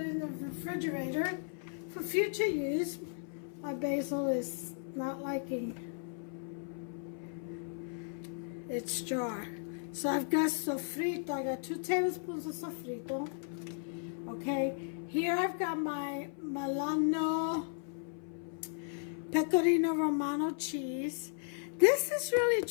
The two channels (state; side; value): silent; right; 54 dB below the other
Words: in the refrigerator for future use. My basil is not liking its jar. So I've got sofrito. I got 2 tablespoons of sofrito. Okay, here I've got my Milano Pecorino Romano cheese. This is really